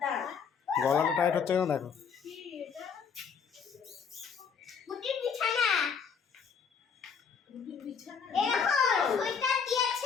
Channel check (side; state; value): right; quieter; 6.4 dB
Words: দাঁড়া। গলাটা টাইট হচ্ছে কেন দেখো। বুটির বিছানা। বিছানা। এরকম সোয়েটার